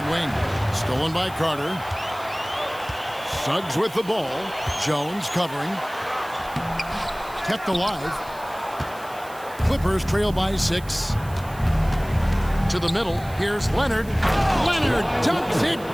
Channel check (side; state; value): right; noise; hiss, 20 dB below the sound